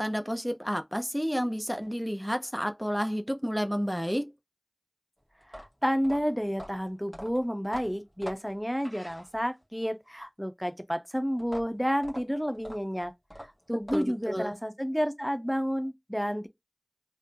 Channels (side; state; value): both; identical; correlation 1.00